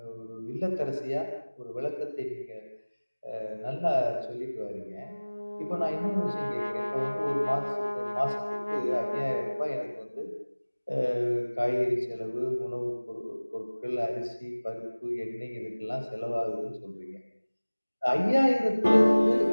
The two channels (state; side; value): inverted; both; correlation -1.00